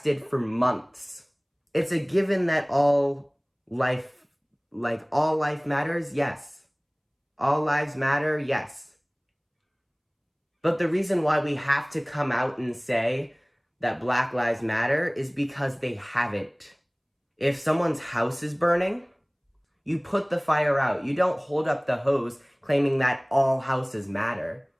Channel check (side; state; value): both; identical; correlation 1.00